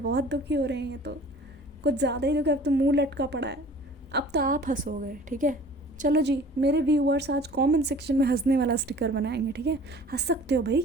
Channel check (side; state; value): both; normal; correlation 0.47